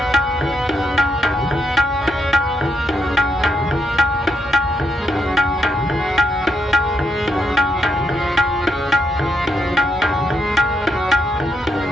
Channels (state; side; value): normal; both; correlation 0.78